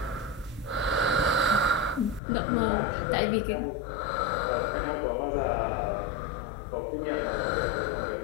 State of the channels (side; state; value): right; drops out; at 2.2 s